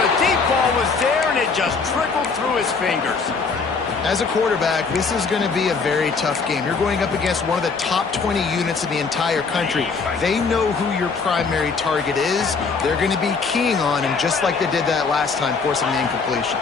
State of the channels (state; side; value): quieter; right; 4.8 dB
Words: Ball was there, and it just trickled through his fingers. As a quarterback, this is going to be a very tough game. You're going up against one of the top 20 units in the entire country. They know who your primary target is. They're going to be keying on him, just like they did that last time, forcing the incompletion.